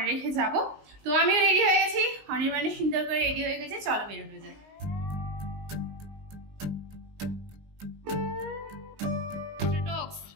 রেখে যাবো। তো আমিও রেডি হয়ে গেছি, অনির্বাণের সুন্দর করে রেডি হয়ে গেছে, চলো বেরোনো যায়।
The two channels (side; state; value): left; late; 19 ms